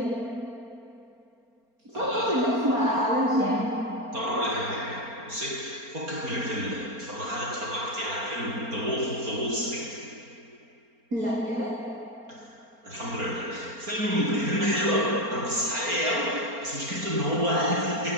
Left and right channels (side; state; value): left; late; 4.3 ms